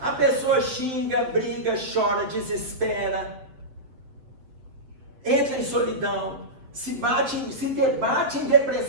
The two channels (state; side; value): late; left; 7.7 ms